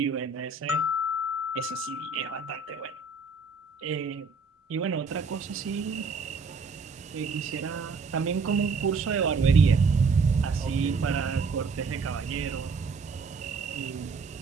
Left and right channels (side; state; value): left; quieter; 4.4 dB